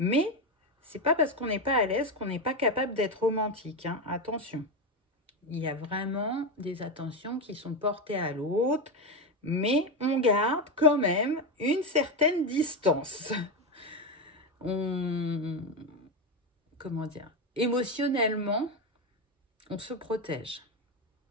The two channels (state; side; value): normal; both; correlation 0.12